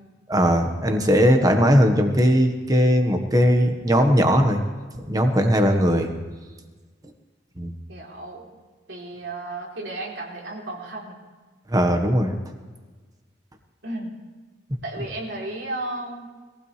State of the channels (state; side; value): normal; both; correlation 0.77